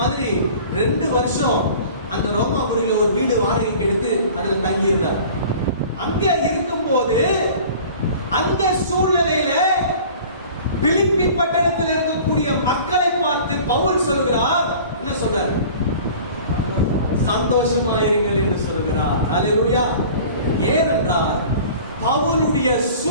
2 வருஷம் அந்த ரோமாபுரியில ஒரு வீடு வாடகைக்கு எடுத்து அதுல தங்கி இருந்தார். அங்க இருக்கும் போது அந்த சூழ்நிலையில பிலிப்பி பட்டணத்தில் இருக்கக்கூடிய மக்களை பார்த்து பவுல் சொல்கிறார், என்ன சொல்றார், சந்தோஷமாயிருங்கள் என்று சொல்கிறார். அல்லேலூயா. ஏனென்றால் பவுலுடைய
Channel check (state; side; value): inverted; both; correlation -0.44